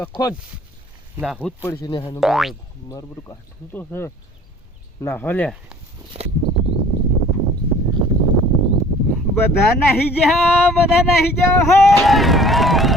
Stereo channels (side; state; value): both; normal; correlation 0.50